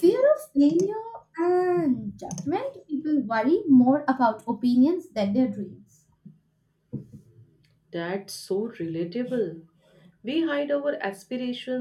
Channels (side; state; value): both; identical; correlation 1.00